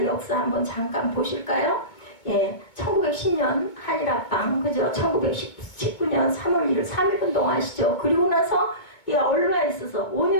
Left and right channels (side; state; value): right; late; 2.2 ms